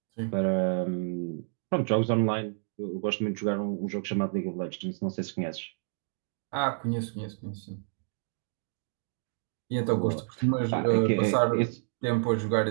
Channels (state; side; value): silent; left; digital silence